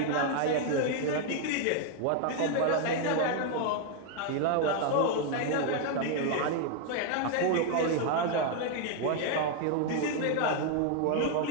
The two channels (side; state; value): both; different; correlation 0.01